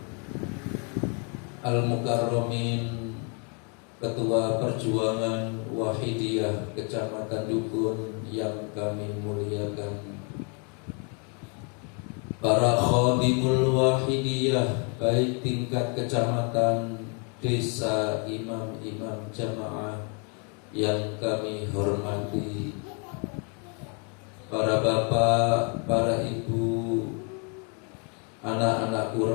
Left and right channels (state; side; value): quieter; right; 37.5 dB